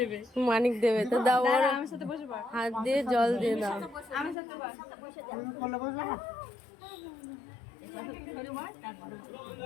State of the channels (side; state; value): right; drops out; at 4.4 s